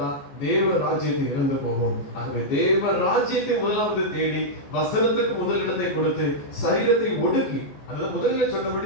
தேவ ராஜ்யத்தை இழந்து போவோம். ஆகவே தேவ ராஜ்யத்தை முதலாவது தேடி வசனத்துக்கு முதல் இடத்தை கொடுத்து சரீரத்தை ஒடுக்கி, அதாவது முதலில்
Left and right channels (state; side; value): late; right; 14 ms